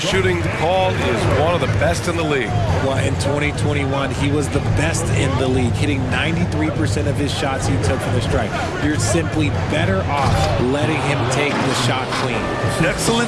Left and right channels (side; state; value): both; identical; correlation 1.00